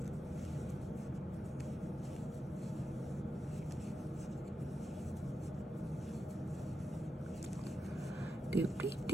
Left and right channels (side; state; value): both; normal; correlation 0.87